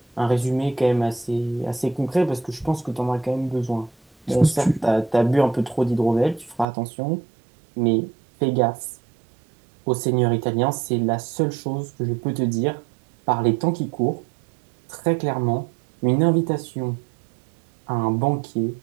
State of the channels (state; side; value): drops out; left; at 6.7 s